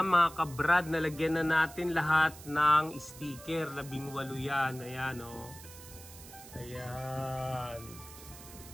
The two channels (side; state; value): right; noise; hiss, 17 dB below the sound